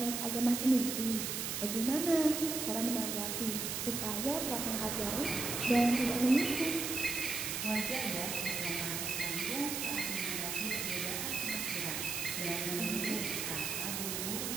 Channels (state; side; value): noise; right; hiss, 2 dB below the sound